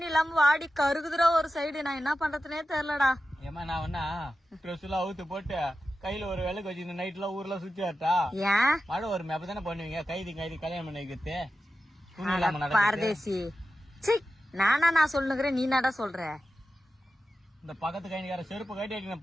இல்லாம வாடி கருகுதுரா ஒரு சைடு. நான் என்ன பண்றதுனே தெரியலடா. ஏமா நான் வேணா ட்ரெஸ் எல்லாம் அவுத்து போட்டு கையில ஒரு விளக்கு வச்சு இந்த நைட் எல்லாம் ஊர்ல சுத்தி வரட்டா? ஏன் மழை வருமே அப்பதானே பண்ணுவீங்க? கைதி கல்யாணம் பண்ணி வைக்கிறது பாரதேசி. சி நானா நான் சொல்லுகிறேன், நீ நாடா சொல்ற? இந்த பக்கத்து கைனிக்கார செருப்பு கட்டி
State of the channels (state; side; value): normal; both; correlation 0.92